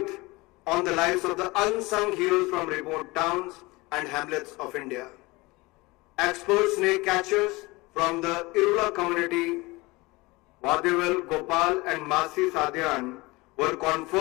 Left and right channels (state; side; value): quieter; right; 22.8 dB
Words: on the lives of the unsung heroes from remote towns and hamlets of India. Expert snake catchers from the Irula community, Vadivel, Gopal and Masi Sadhyan, were